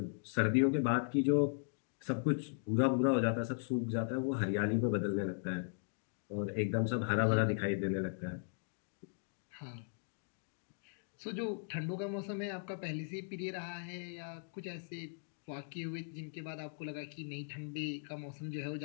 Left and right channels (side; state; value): right; silent; digital silence